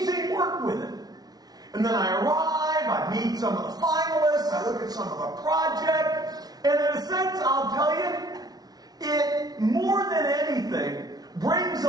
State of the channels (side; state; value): left; late; 0.19 ms